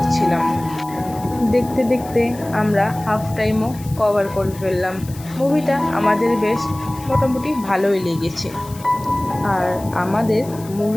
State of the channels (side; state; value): left; noise; hiss, 19 dB below the sound